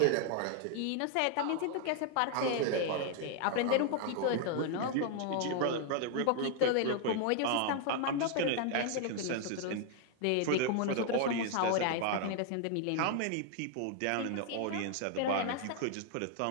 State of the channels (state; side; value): different; both; correlation 0.00